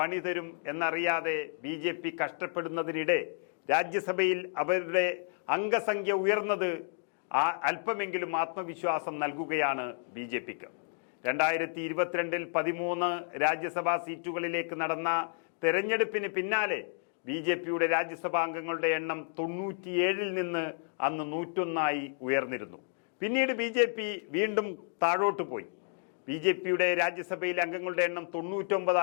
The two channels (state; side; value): silent; right; 57 dB below the other